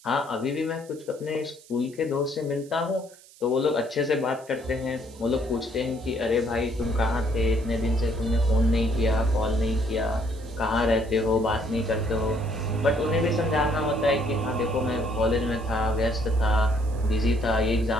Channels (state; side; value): noise; right; hiss, 24 dB below the sound